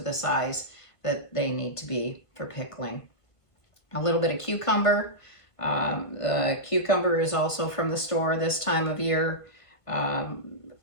the size that they need to be for pickling. A little bit of cucumber. The cucumber is also from the store this time of year.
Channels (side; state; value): right; late; 1.4 ms